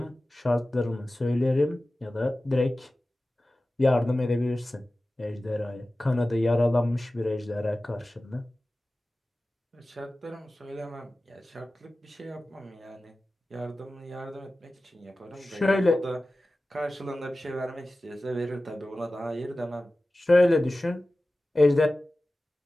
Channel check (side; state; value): both; normal; correlation 0.96